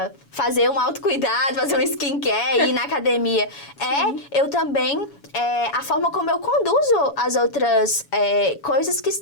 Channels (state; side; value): late; right; 7.1 ms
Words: fazer um autocuidado, fazer um skincare, ir na academia. Eu também a forma como eu conduzo as outras coisas que